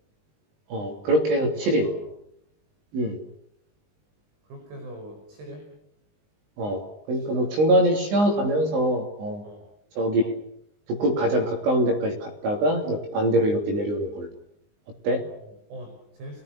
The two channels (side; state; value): left; late; 20 ms